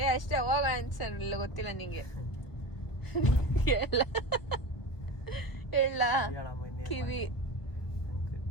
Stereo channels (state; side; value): late; right; 1.2 ms